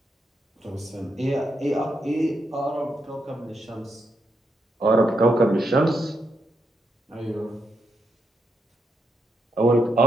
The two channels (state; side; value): normal; both; correlation 0.82